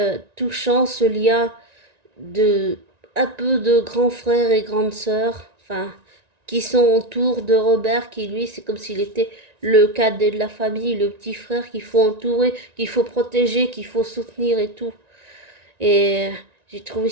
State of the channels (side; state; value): left; late; 1.9 ms